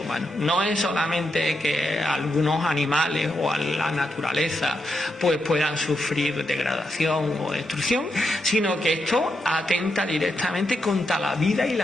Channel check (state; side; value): normal; both; correlation 0.83